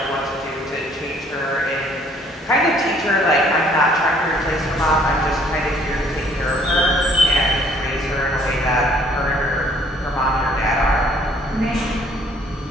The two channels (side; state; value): both; normal; correlation 0.60